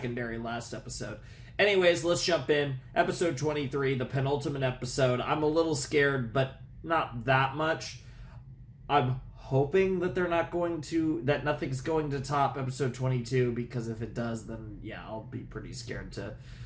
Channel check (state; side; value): identical; both; correlation 1.00